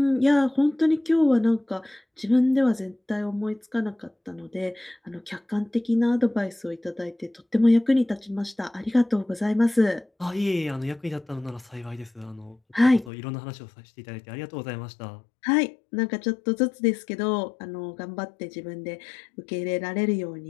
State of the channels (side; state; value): right; drops out; at 13.1 s